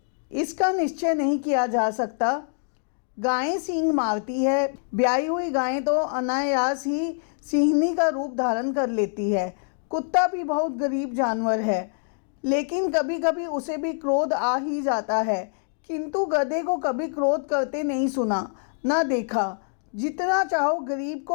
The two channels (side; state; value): right; silent; 56 dB below the other